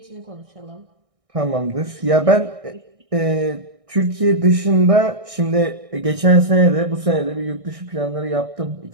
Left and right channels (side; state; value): left; late; 1.6 ms